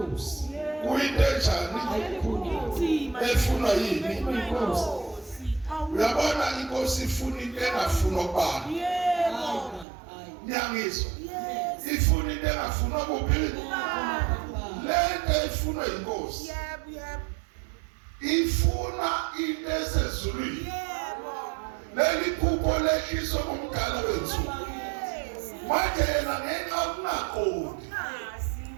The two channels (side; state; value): left; drops out; at 9.9 s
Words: kuyinto enjani efunwa yini inkosi uyabona inkosi ifuna into engafunwa kubani nyangizwa ifuna into engafunwa kuphi lento ifunwa inkosi ifuna into esezulwini leli phupho lehliswa ngumdala wensuku manje yena ngenxa yokungaqondi